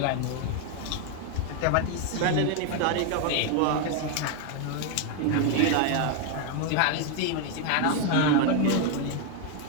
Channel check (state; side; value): different; both; correlation 0.00